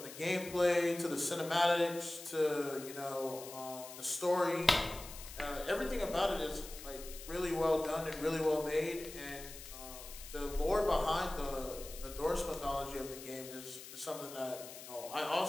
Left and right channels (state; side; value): noise; left; hiss, 13 dB below the sound